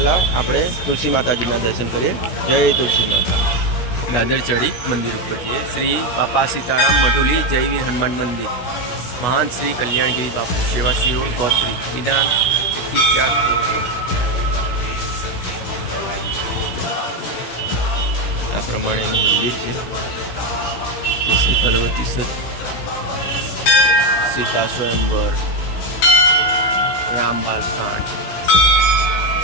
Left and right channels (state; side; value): late; right; 17 ms